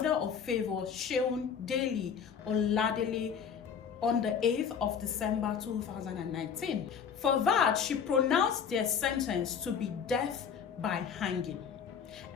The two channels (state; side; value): quieter; right; 7.1 dB